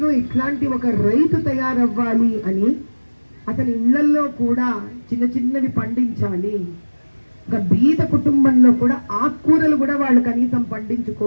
ఇట్లాంటి ఒక రైతు తయారవ్వాలి అని, అతని ఇళ్లల్లో కూడా చిన్నవి పండించాలి. ఒక బీద కుటుంబంలో కూడా ఆకుకూరలు కూడా వాళ్ళు కనీసం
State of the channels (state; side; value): inverted; both; correlation -1.00